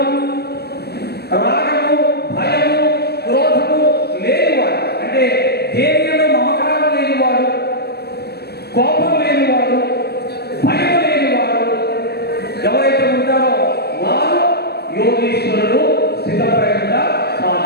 రాగము భయము క్రోధము లేనివాడు, అంటే దేనిలో మమకారం లేనివాడు, కోపం లేనివాడు, భయం లేనివాడు ఎవరైతే ఉంటారో వారు యోగీశ్వరుడు స్థితప్రజ్ఞగా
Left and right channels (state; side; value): late; right; 0.47 ms